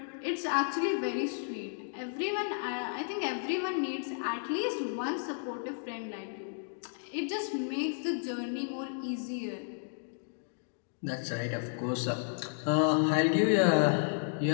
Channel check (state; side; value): silent; right; digital silence